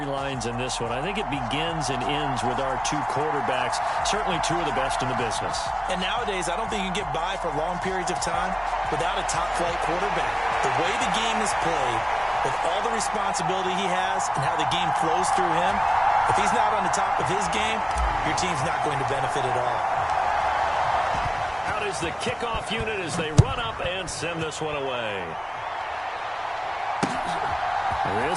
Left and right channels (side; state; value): both; identical; correlation 1.00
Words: in this one. I think it begins and ends with our two quarterbacks, certainly two of the best in the business. And nowadays, I don't think you can get by for long periods of time without a top-flight quarterback. The way the game is played, with all the responsibility he has and how the game flows through him, if he's not on the top of his game, your team's not going to benefit at all. Out is the kickoff unit as they run up and send this one away.